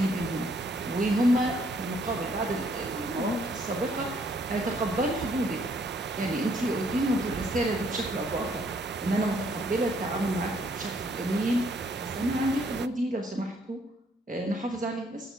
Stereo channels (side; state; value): both; normal; correlation 0.66